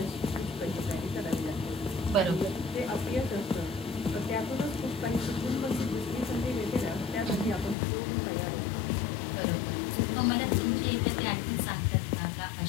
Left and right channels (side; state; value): right; drops out; at 7.8 s